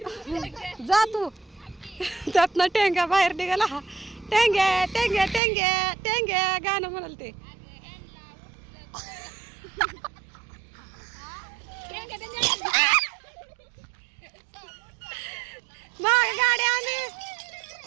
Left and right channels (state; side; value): drops out; left; at 5.4 s